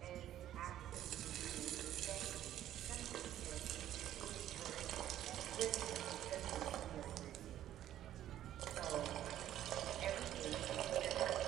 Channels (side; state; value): left; quieter; 12.1 dB